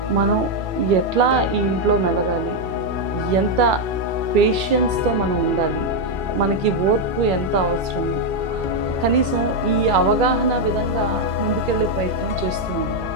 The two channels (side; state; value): left; late; 2.3 ms